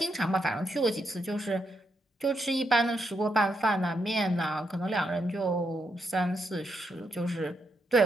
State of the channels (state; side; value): normal; both; correlation 0.80